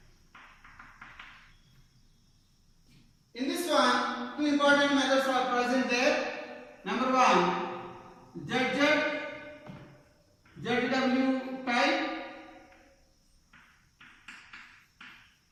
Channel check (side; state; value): both; identical; correlation 1.00